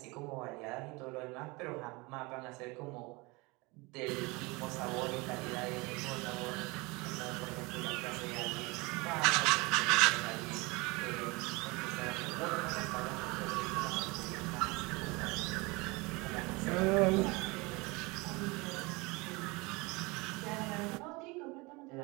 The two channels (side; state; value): left; quieter; 25.4 dB